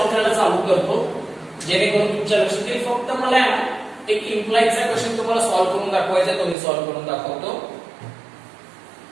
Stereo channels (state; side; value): drops out; left; at 6.6 s